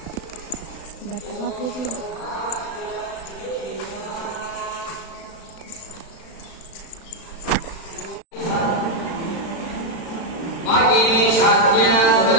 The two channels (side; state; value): right; late; 36 ms